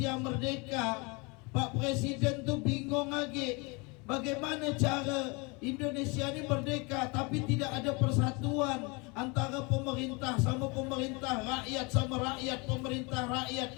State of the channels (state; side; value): quieter; right; 28.9 dB